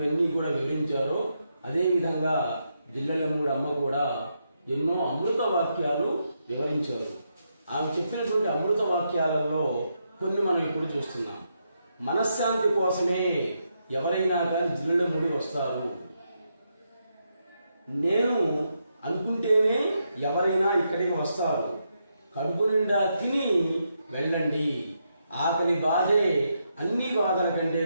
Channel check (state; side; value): inverted; both; correlation -0.81